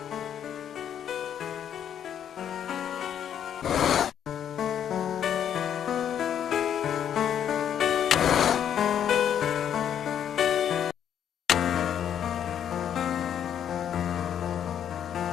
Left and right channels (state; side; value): quieter; right; 9.3 dB